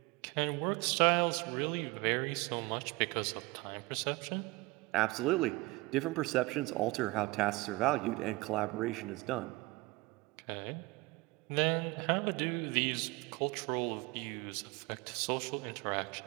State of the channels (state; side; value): quieter; left; 22.8 dB